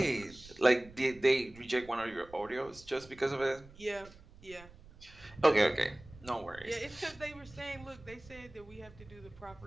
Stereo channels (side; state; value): right; noise; rumble, 21 dB below the sound